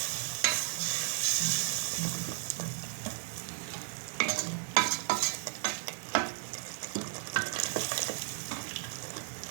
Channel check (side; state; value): left; silent; digital silence